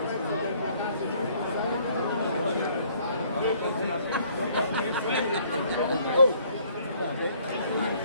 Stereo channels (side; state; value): both; inverted; correlation -0.61